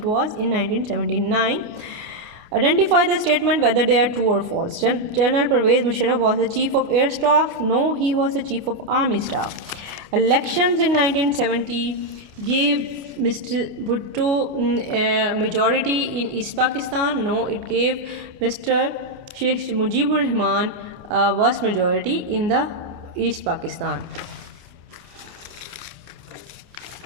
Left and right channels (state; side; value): late; left; 29 ms